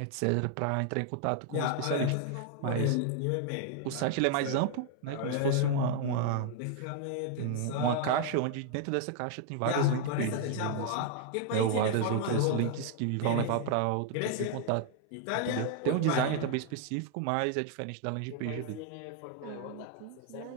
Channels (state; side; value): different; both; correlation 0.00